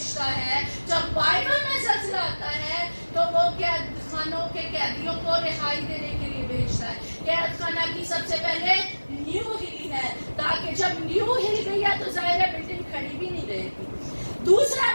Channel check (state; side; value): inverted; both; correlation -1.00